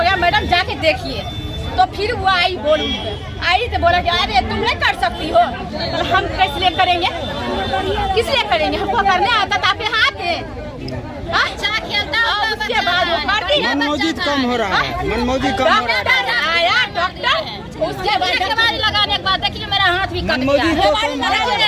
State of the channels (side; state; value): both; identical; correlation 1.00